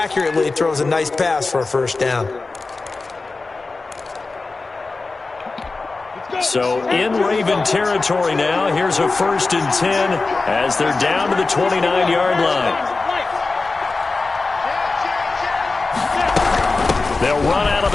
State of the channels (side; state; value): right; quieter; 3.7 dB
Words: throws a nice pass for a first down. So in Raven territory now, here's a 1st and 10 as they're down to the 29-yard line. They'll run out of